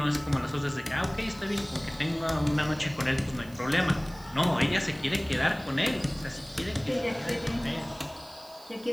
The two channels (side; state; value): right; noise; hiss, 23 dB below the sound